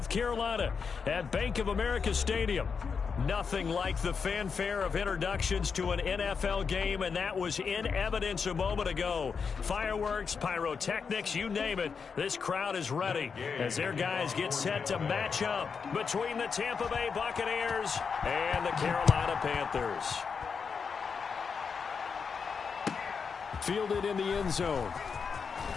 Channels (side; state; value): right; quieter; 5.8 dB